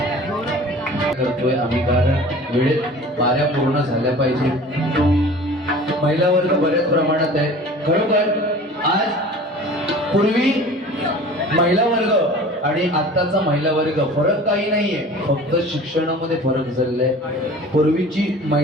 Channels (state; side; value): normal; both; correlation 0.43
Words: करतोय आम्ही कारण वेळेत बाऱ्या पूर्ण झाल्या पाहिजे. महिला वर्ग बऱ्याच प्रमाणात आहे खरोखर. आज पूर्वी महिला वर्ग आणि आत्ताचा महिला वर्ग फरक काही नाहीये, फक्त शिक्षणामध्ये फरक झालेला आहे. पूर्वीची